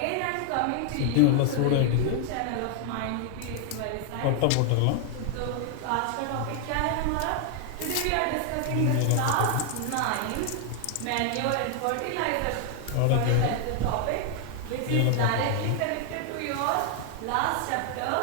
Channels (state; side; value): different; both; correlation 0.00